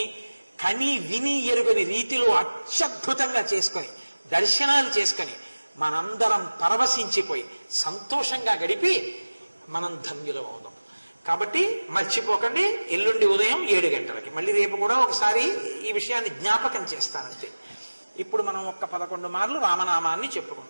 కని విని ఎరుగని రీతిలో అత్యద్భుతంగా చేసుకొని దర్శనాలు చేసుకొని మనందరం పరవశించిపోయి సంతోషంగా గడిపి మనం ధన్యులం అవుదాం. కాబట్టి మర్చిపోకండి, ఎల్లుండి ఉదయం 7 గంటలకి. మళ్ళీ రేపు కూడా ఒకసారి ఈ విషయాన్ని జ్ఞాపకం చేస్తానంతే. ఇప్పుడు మనం 11 మార్లు రామనామాన్ని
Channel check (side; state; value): both; inverted; correlation -1.00